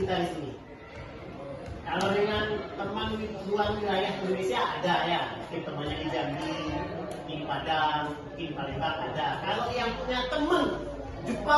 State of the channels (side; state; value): both; identical; correlation 1.00